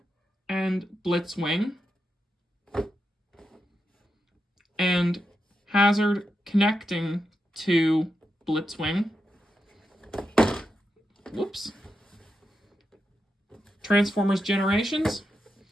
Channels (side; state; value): both; normal; correlation 0.87